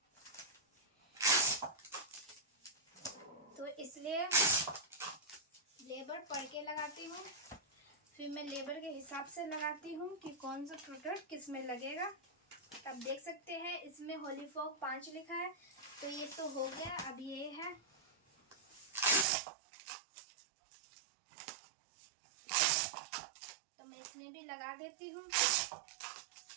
तो इसलिए लेबर पढ़ के लगाती हूँ, फिर मैं लेबर के हिसाब से लगाती हूँ कि कौन सा प्रोडक्ट किस में लगेगा। अब देख सकते हैं इसमें होली फॉग 5 लिखा है, तो ये तो हो गया। अब ये है, तो मैं इसमें भी लगा देती हूँ।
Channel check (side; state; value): left; drops out; at 19.2 s